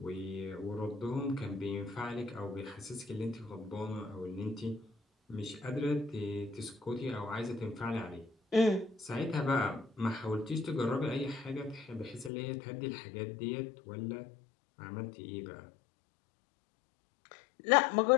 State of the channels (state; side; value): drops out; right; at 12.3 s